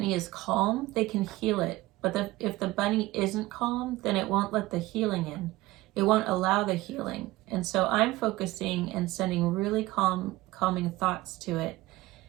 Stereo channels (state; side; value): quieter; left; 18.7 dB